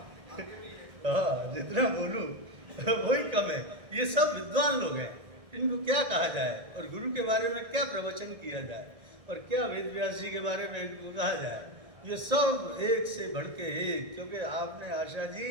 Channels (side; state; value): left; late; 1.7 ms